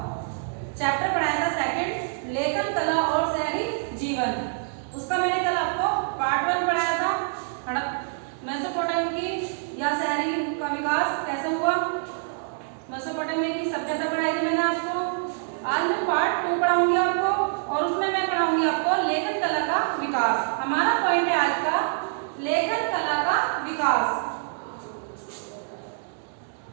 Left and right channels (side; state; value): left; silent; digital silence